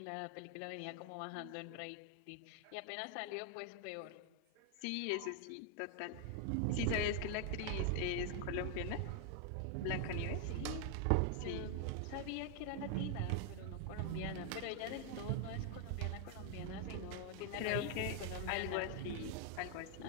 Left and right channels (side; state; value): both; different; correlation 0.00